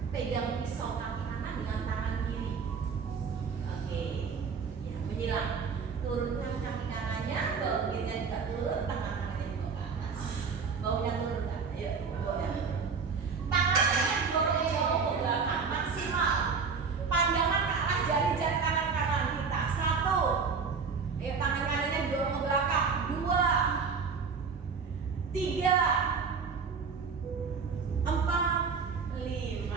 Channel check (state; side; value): quieter; left; 5.5 dB